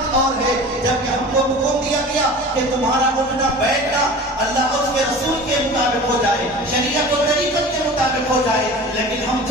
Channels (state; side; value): normal; both; correlation 0.38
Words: اور ہے۔ جب کہ ہم کو حکم دیا گیا کہ تمہارا اٹھنا بیٹھنا اللہ اور اس کے رسول کے مطابق ہو جائے، شریعت و طریقت کے مطابق ہو جائے، لیکن ہم